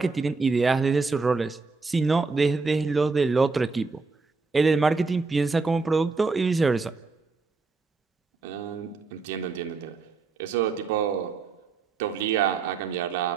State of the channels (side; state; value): left; quieter; 4.2 dB